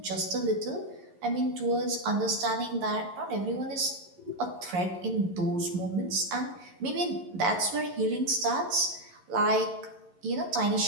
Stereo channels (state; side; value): late; left; 11 ms